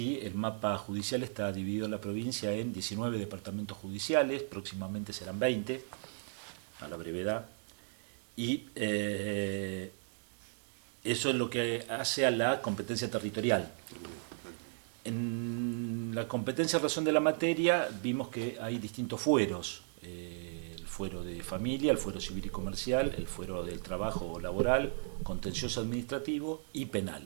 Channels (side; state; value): left; silent; digital silence